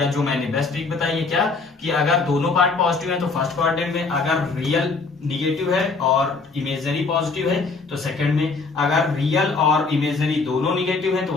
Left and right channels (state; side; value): quieter; right; 4.1 dB